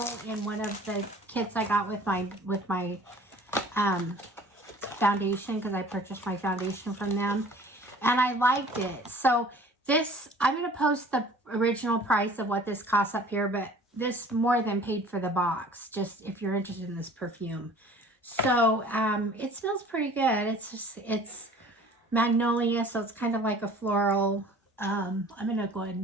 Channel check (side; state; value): both; normal; correlation 0.49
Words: in one of the kits I got with my foundation, because I purchased my foundation from them, and I liked it. So this, I'm going to post the original price of what this costs up here, but this more than paid for the box, just if you're interested in this perfume. So it smells pretty good. It's magnolia, so it's kind of like a floral. I'm gonna go ahead